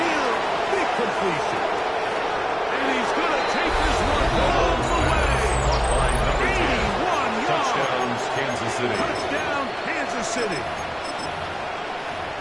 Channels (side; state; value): both; identical; correlation 1.00